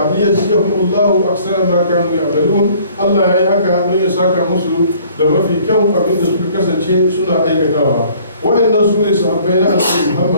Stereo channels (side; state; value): both; inverted; correlation -0.56